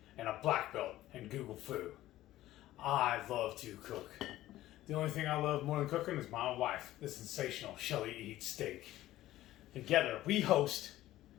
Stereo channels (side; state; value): right; quieter; 15.0 dB